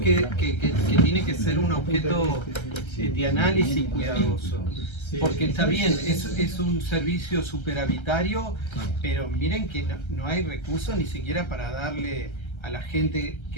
tiene que ser un objeto de análisis cuidadoso, porque está bien, es un servicio superavitario, pero miren que no hay recursos ni siquiera para darle a la gente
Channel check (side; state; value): right; late; 1.3 ms